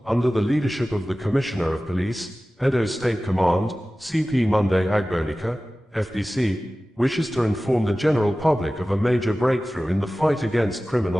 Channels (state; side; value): normal; both; correlation 0.96